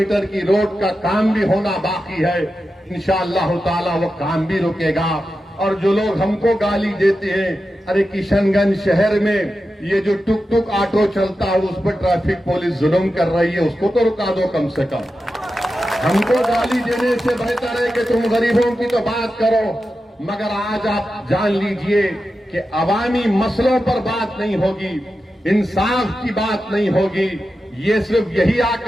کی روڈ کا کام بھی ہونا باقی ہے۔ انشاءاللہ تعالی وہ کام بھی رکے گا۔ اور جو لوگ ہم کو گالی دیتے ہیں، ارے کشن گنج شہر میں یہ جو ٹک ٹک آٹو چلتا ہے اس پر ٹریفک پولیس ظلم کر رہی ہے، اس کو تو رکا دو کم سے کم۔ ہم کو گالی دینے سے بہتر ہے کہ تم غریبوں کی تو بات کرو، مگر آج آپ جان لیجئے کہ عوامی مسئلوں پر بات نہیں ہوگی، انصاف کی بات نہیں ہوگی۔ یہ صرف یہی آ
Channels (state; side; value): normal; both; correlation 0.91